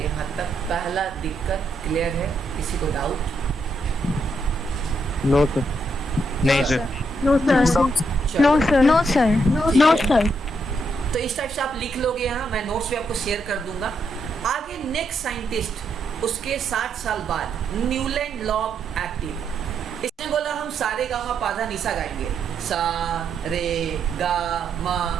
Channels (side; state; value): both; normal; correlation 0.78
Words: तक, पहला दिक्कत क्लियर है, किसी को डाउट? No sir. नहीं सर। No sir. चलो। No sir. तो इस टाइप से आप लिख लोगे यहाँ, मैं नोट्स भी आपको शेयर कर दूंगा। आगे नेक्स्ट साइंटिस्ट, उसके 60 साल बाद, न्यूलैंड लॉ एक्टिव। इसने बोला हम सारे गा मा पा धा निसा गाएंगे, सा रे गा मा